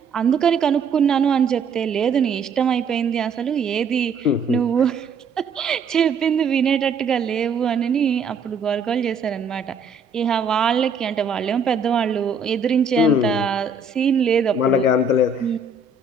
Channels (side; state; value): left; quieter; 4.1 dB